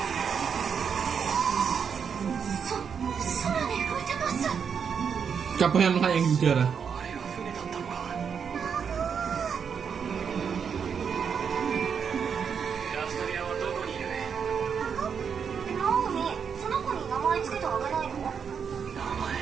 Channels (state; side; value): quieter; left; 6.9 dB